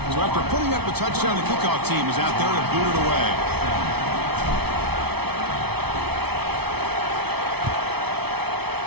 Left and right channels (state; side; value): late; left; 0.98 ms